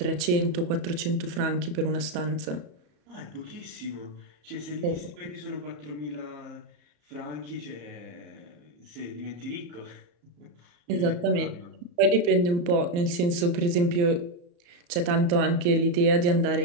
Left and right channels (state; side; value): late; left; 34 ms